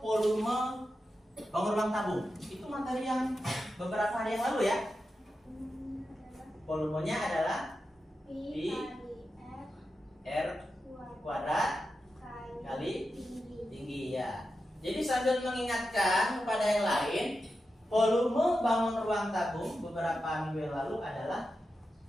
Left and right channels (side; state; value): both; normal; correlation 0.90